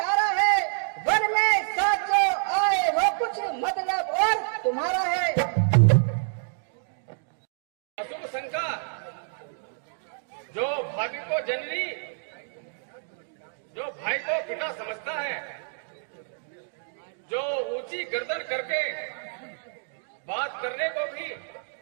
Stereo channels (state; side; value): silent; left; digital silence